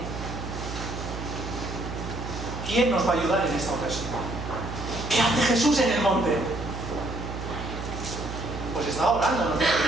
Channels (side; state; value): right; noise; hum, 7 dB below the sound